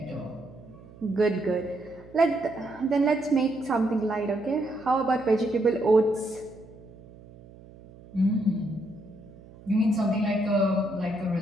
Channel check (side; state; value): right; noise; hum, 21 dB below the sound